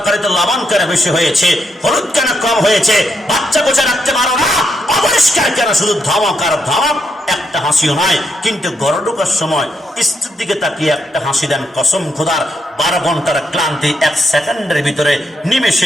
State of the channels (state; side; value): normal; both; correlation 0.80